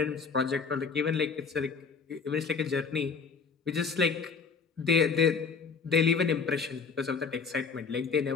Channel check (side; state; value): right; quieter; 5.3 dB